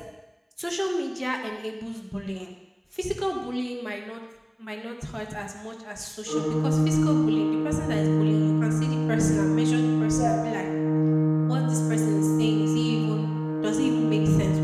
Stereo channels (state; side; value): identical; both; correlation 1.00